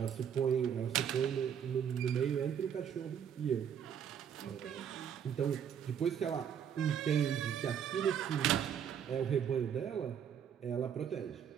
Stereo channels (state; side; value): quieter; left; 8.4 dB